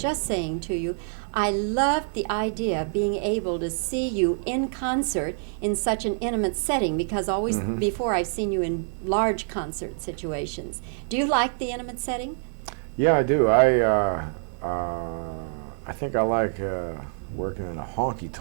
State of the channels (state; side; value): silent; left; 60 dB below the other